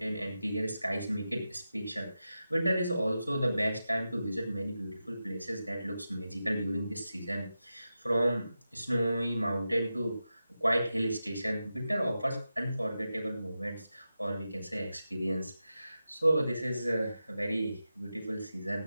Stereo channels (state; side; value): inverted; both; correlation -0.91